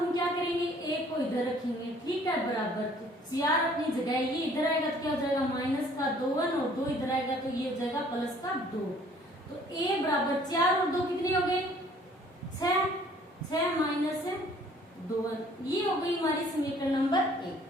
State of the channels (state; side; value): normal; both; correlation 0.57